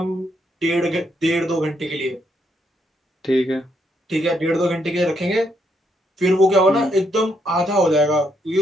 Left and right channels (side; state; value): both; normal; correlation 0.75